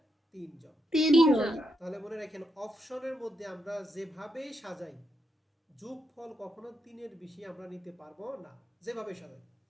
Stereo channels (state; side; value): normal; both; correlation 0.82